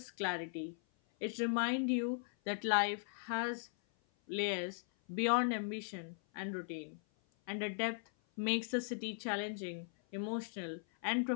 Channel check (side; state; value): right; silent; 52 dB below the other